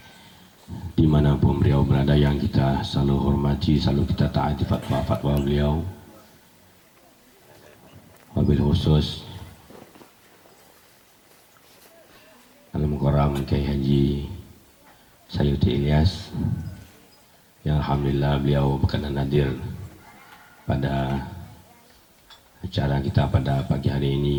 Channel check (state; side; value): identical; both; correlation 1.00